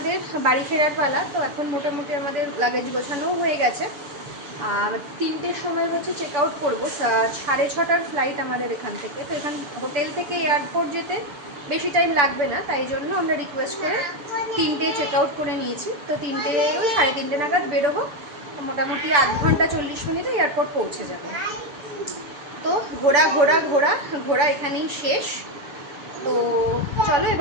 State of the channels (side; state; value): left; late; 6.9 ms